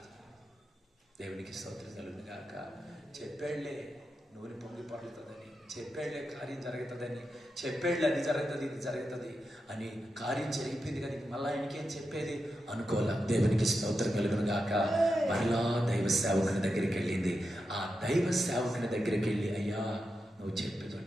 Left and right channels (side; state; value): both; normal; correlation 0.88